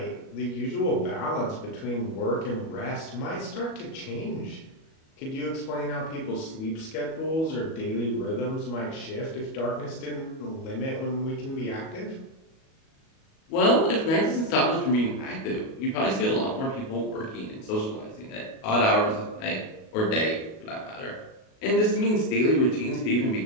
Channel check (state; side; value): late; right; 37 ms